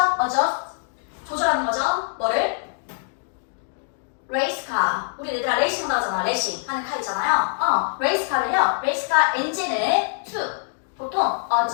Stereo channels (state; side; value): silent; right; 63 dB below the other